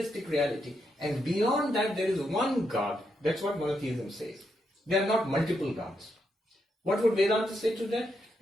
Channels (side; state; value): both; normal; correlation 0.81